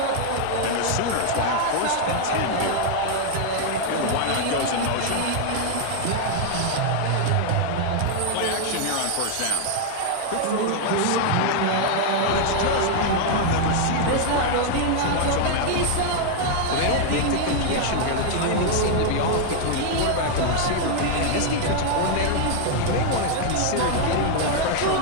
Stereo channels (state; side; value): different; both; correlation 0.00